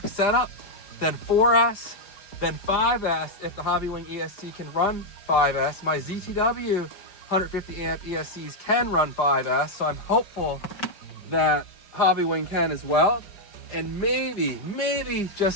setup. Then 4S, then 5S if the Hobbywing ESC can run 5S. My ZTW 150 amp ESCs can run 5S, so I'm hopeful that Hobbywing can as well. And maybe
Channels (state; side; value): late; right; 5.0 ms